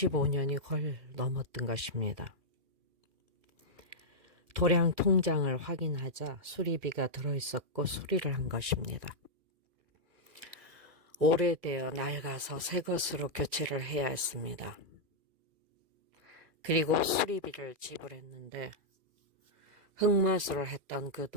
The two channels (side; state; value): left; late; 2.4 ms